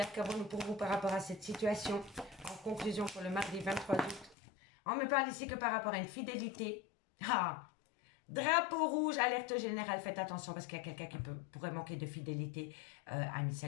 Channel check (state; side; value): drops out; right; at 4.4 s